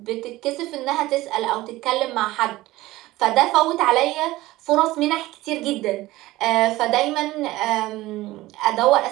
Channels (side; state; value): left; quieter; 17.8 dB